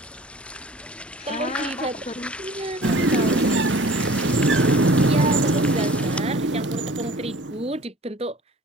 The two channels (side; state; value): both; normal; correlation 0.46